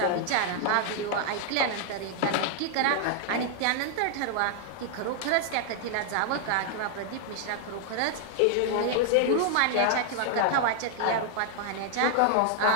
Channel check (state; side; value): different; both; correlation 0.00